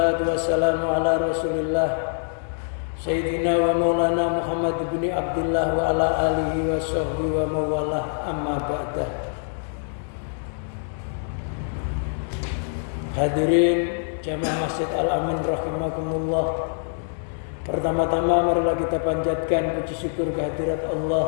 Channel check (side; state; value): right; silent; digital silence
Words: wassalamu ala rasulillah Sayyidina wa maulana Muhammad ibn Abdullah wa ala alihi wa sahbihi wa mawalah, amma ba'dah. Hadirin Jamaah Masjid Al-Amin rahimakumullah. Pertama-tama marilah kita panjatkan puji syukur kehadirat